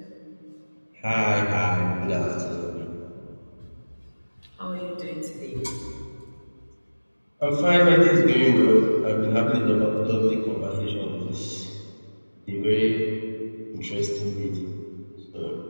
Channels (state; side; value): inverted; both; correlation -1.00